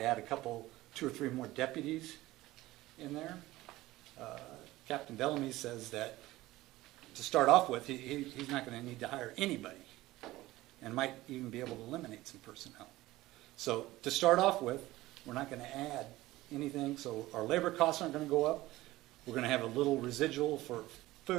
add 2 or 3 more deputies in there. Captain Bellamy says that to start off with, he's not going to need to hire anybody, and might even be able to eliminate some personnel. So to start off with, we're not going to add anything, so our labor costs aren't going to go up. We're going to have a little residual for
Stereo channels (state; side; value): quieter; left; 17.6 dB